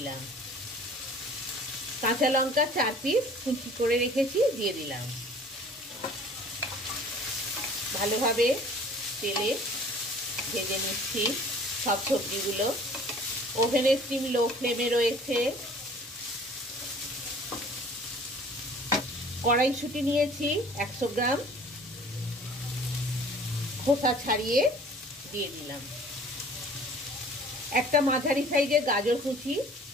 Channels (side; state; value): both; normal; correlation 0.49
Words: কাঁচা লঙ্কা 4 পিস কুচি করে রেখেছি, দিয়ে দিলাম। ভালোভাবে তেলে ভেজে নিচ্ছি সব সবজিগুলো। ওভেনের স্টিম লো ফ্লেমে রয়েছে। কড়াইশুঁটি নিয়েছি 100 গ্রাম, খোসা ছাড়িয়ে দিয়ে দিলাম। একটা মাঝারি সাইজের গাজর কুচি